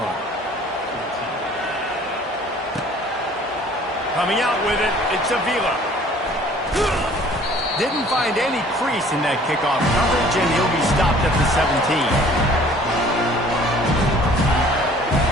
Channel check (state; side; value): normal; both; correlation 0.53